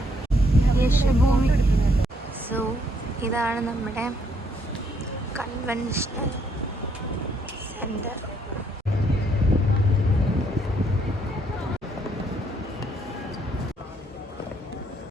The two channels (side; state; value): both; normal; correlation 0.71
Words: സോ ഇതാണ് നമ്മുടെ കൺവെൻഷണൽ സെന്റർ.